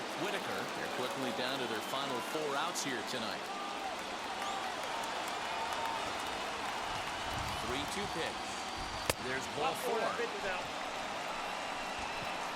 Whitaker. They're quickly down to their final 4 outs here tonight. 3-2 pitch. There's ball 4.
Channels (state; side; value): identical; both; correlation 1.00